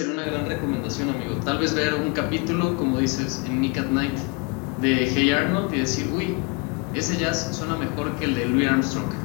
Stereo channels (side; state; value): right; quieter; 29.0 dB